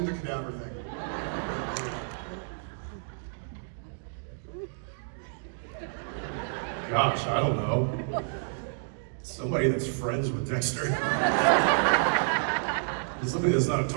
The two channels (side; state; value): left; silent; digital silence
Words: the cadaver thing. Gosh, I don't know. Somebody that's friends with Dexter. Somebody that's not a